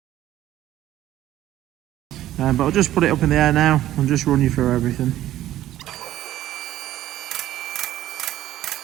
But I'll just put it up in the air now and just run you through everything.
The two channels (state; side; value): quieter; left; 13.5 dB